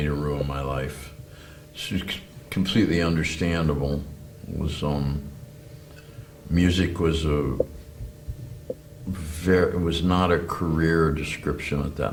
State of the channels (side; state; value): both; identical; correlation 1.00